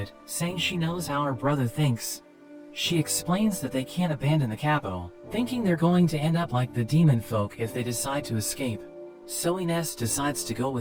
saying she knows how her brother thinks. She explains that they can't abandon the capital, thinking they're going to end up like the demon folk if they decide to escape. So Ines decides to go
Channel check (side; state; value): both; identical; correlation 1.00